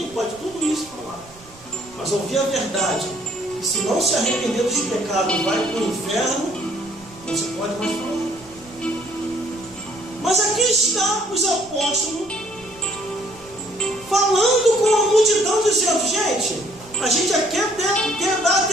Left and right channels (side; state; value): right; noise; rumble, 24 dB below the sound